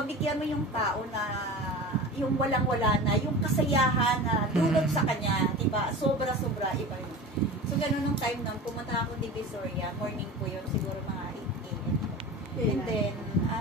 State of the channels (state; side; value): normal; both; correlation 0.33